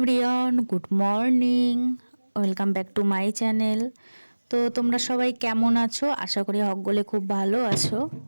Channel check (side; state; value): both; inverted; correlation -1.00